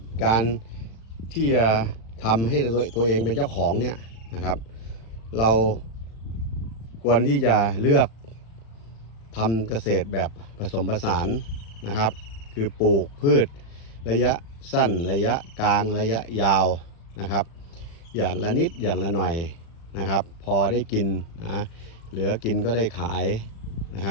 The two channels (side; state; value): right; late; 36 ms